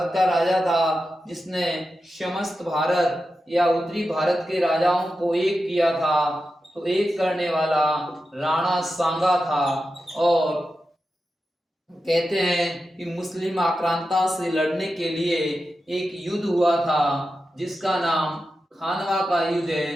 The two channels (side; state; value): both; normal; correlation 0.91